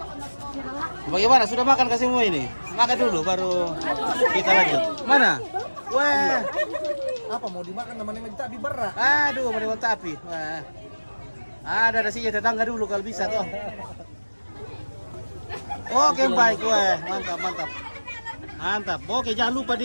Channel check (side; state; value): both; inverted; correlation -1.00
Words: Bagaimana? Sudah makan kasih semua ini? Makan dulu baru kita lanjut. Mana? Wah. Apa mau dimakan namanya minta berat. Aduh, mau tapi. Wah. Ada nasinya tetangga dulu kalau bisa toh. Oke, baik. Wah, mantap. Oke, jangan lupa